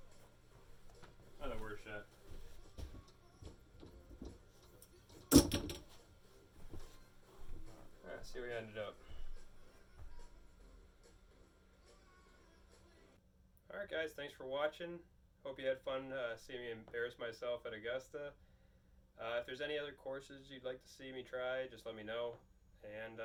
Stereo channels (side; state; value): both; identical; correlation 1.00